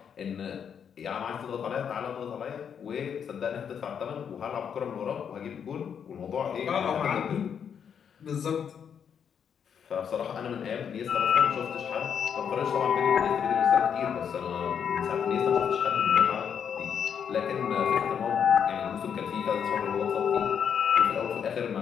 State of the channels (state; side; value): quieter; right; 7.7 dB